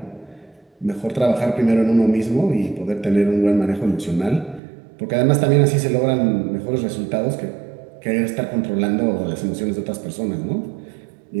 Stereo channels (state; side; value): drops out; left; at 4.6 s